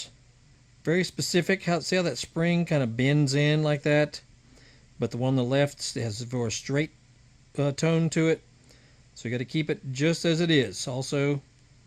Very specific. See how that spring kind of bends in like that? But the one on the left has a more straight tone to it. So you got to keep it just as it is. Also,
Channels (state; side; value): identical; both; correlation 1.00